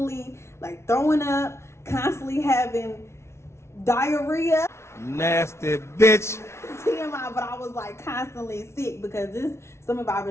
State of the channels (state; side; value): late; right; 0.13 ms